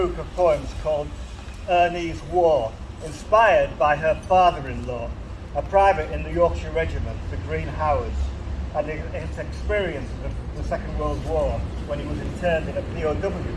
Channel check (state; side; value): identical; both; correlation 1.00